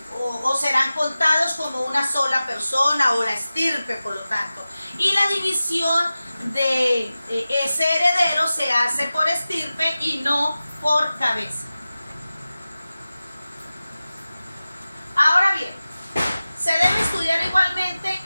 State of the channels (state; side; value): inverted; both; correlation -0.96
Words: o serán contados como una sola persona o la estirpe, por lo tanto. Y la división de ese heredero se hace por estirpe y no por cabeza. Ahora bien, se debe estudiar igualmente